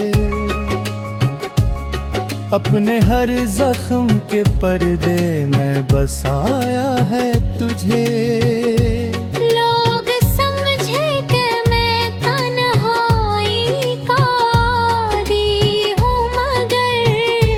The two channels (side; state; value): both; identical; correlation 1.00